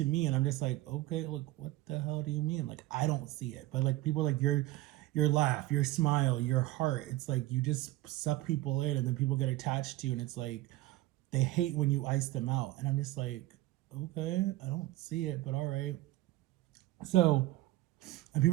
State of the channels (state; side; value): quieter; left; 17.3 dB